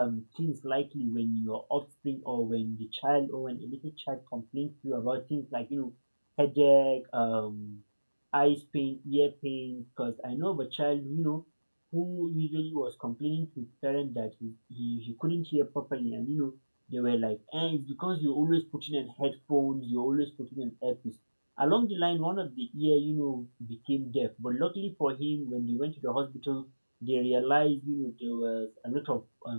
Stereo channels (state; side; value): inverted; both; correlation -1.00